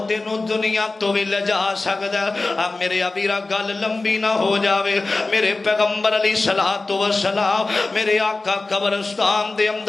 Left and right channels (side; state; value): right; quieter; 3.4 dB